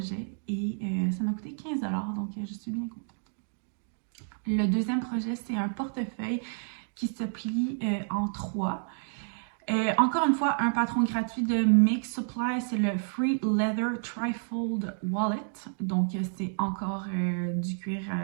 Et ça m'a coûté 15 $. Donc, je suis bien contente. Le deuxième projet, c'est un portefeuille qui se plie en 3. Encore une fois, un patron gratuit de Make Supply, c'est le Free Leather Trifold Wallet. Donc, c'est encore du cuir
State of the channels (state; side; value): silent; left; digital silence